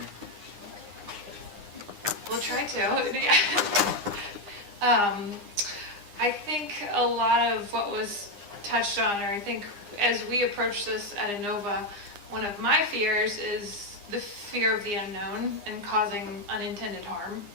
We'll try to. Yeah. I think a lot of what was touched on, or I think as we approach this at Inova, one of my fears is the fear of the unknown and causing unintended harm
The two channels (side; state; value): left; late; 9.8 ms